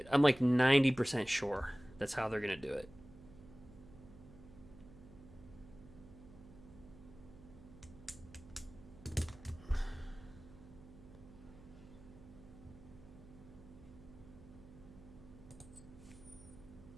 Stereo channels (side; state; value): right; noise; hum, 18 dB below the sound